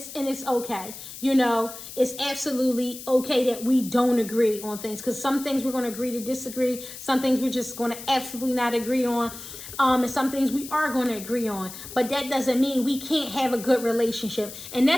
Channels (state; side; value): noise; left; hiss, 12 dB below the sound